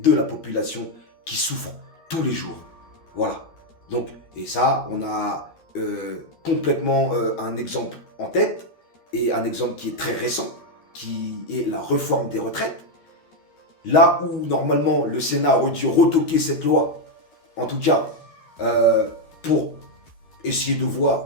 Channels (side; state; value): right; late; 13 ms